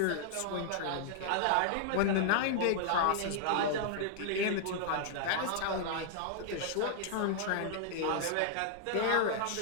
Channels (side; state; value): both; different; correlation -0.01